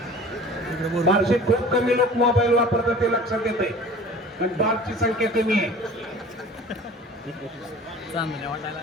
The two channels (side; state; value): both; normal; correlation 0.43